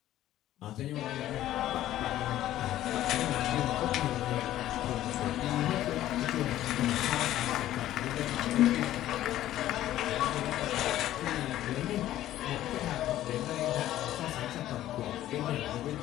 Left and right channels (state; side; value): quieter; right; 13.5 dB